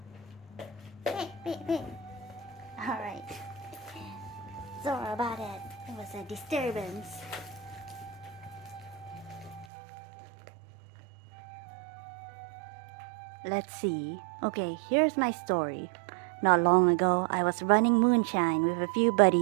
Alright. Sorry about it. It was a disturbance. Let's see. Okay, here's my story. Not long ago, I was running moonshine with a few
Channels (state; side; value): drops out; left; at 9.7 s